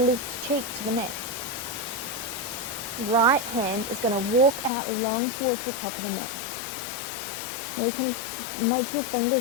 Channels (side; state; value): right; drops out; at 4.7 s